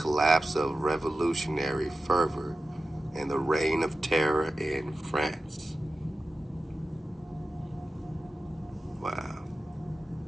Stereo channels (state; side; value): normal; both; correlation 0.93